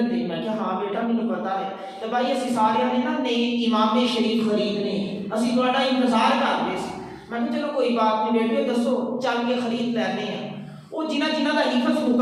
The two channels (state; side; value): identical; both; correlation 1.00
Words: ہے؟ میں کہ ہاں بیٹا مجھے پتا ہے۔ تو بھائی اسی سارے نے نا نئے امام شریف خریدنے، اسی تہاڈا انتظار کر رہے سی۔ میں کہ چلو کوئی بات نہیں بیٹے دسو چل کے خرید لینے ہیں۔ وہ جنہ دا حفظ